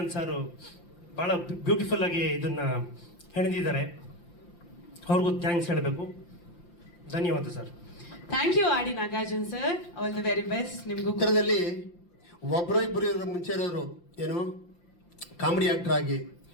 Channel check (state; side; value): late; right; 5.8 ms